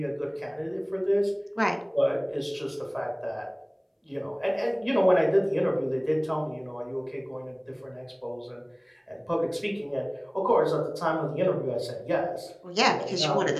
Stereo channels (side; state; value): both; identical; correlation 1.00